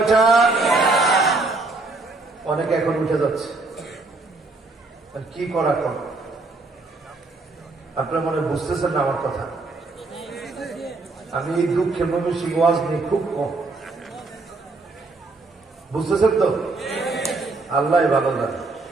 অনেকে এখন উঠে যাচ্ছে, কি করা কর? আপনার মনে বুঝতেছেন না আমার কথা? আমি এই দুঃখের ময়মনসিংহ ওয়াজ নিয়ে খুব কম, বুঝতেছেন তো? আল্লাহ ভালো জানে।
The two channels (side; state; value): left; quieter; 3.5 dB